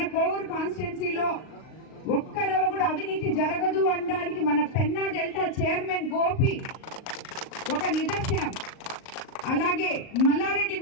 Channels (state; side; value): late; right; 38 ms